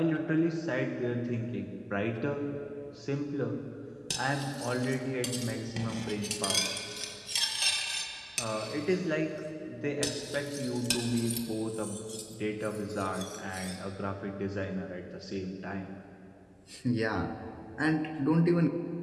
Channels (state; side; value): identical; both; correlation 1.00